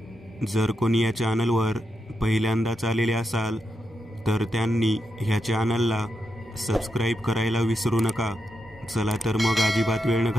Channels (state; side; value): normal; both; correlation 0.85